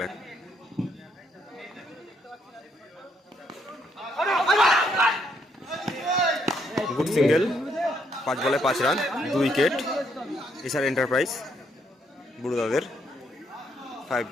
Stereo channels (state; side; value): normal; both; correlation 0.73